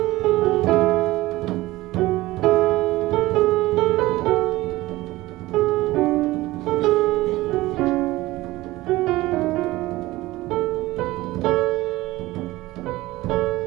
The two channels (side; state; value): left; quieter; 18.5 dB